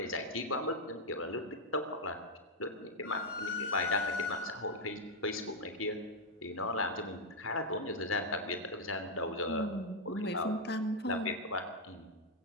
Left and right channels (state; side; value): normal; both; correlation -0.01